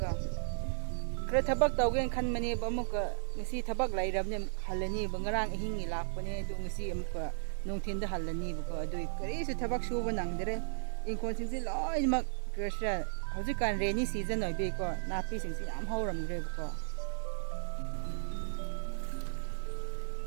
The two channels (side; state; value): left; silent; digital silence